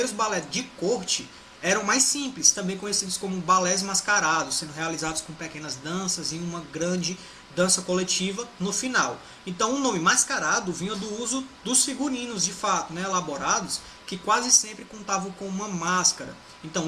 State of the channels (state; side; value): identical; both; correlation 1.00